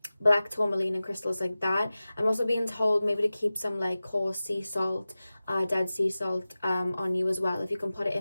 black tourmaline and crystals like that. I'm also being told maybe to keep some like coarse sea salt, dead sea salt on you as well. If you can put it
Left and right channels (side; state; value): both; inverted; correlation -0.96